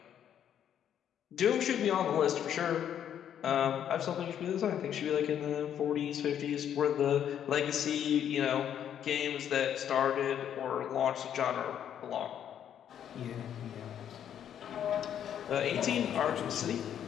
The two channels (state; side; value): quieter; right; 9.6 dB